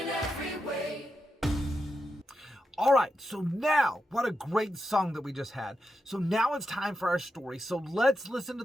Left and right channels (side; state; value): both; normal; correlation 0.87